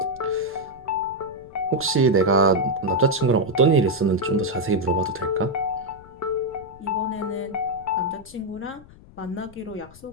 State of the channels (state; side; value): noise; left; rumble, 22 dB below the sound